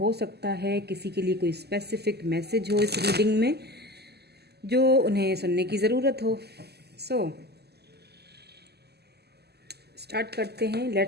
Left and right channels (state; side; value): late; left; 0.47 ms